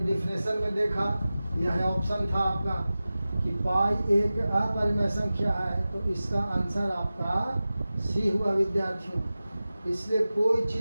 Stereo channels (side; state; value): both; inverted; correlation -0.96